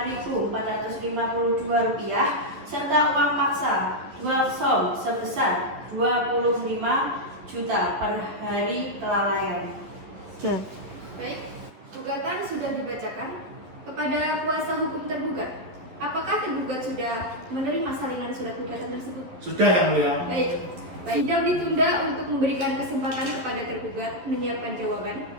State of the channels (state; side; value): late; left; 11 ms